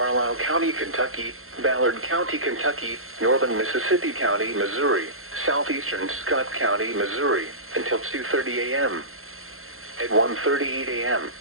County, Kentucky, Ballard County, Kentucky, northern Mississippi County, Missouri, southeastern Scott County, Missouri, until 2:30 a.m. At 1:38 a.m.,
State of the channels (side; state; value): left; late; 0.62 ms